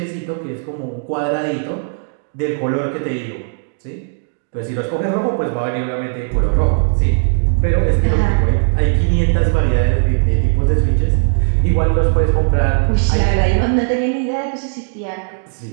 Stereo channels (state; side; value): silent; left; digital silence